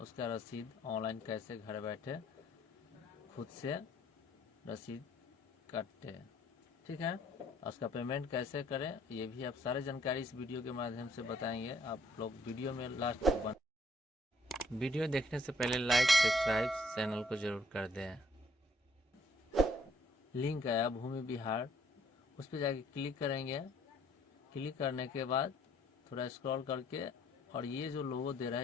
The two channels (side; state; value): both; normal; correlation 0.64